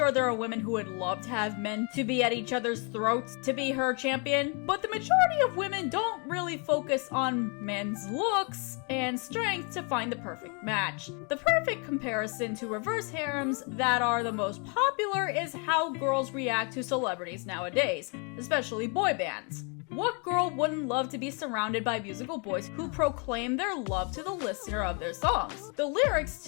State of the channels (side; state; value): right; quieter; 35.4 dB